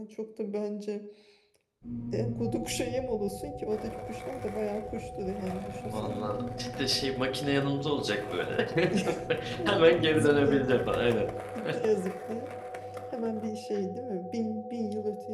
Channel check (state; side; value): identical; both; correlation 1.00